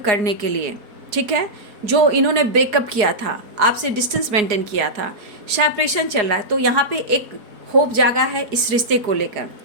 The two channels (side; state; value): left; late; 4.8 ms